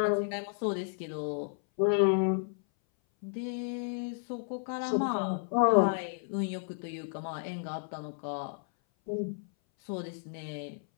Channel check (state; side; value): silent; right; 56 dB below the other